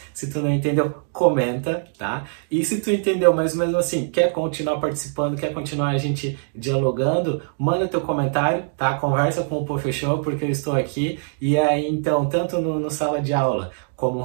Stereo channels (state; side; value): silent; left; digital silence